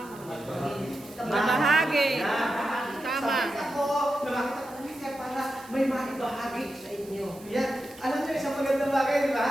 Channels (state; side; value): noise; right; hiss, 22 dB below the sound